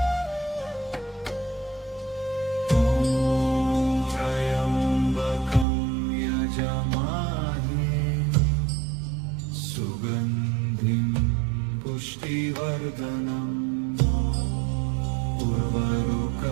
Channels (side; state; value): left; drops out; at 5.7 s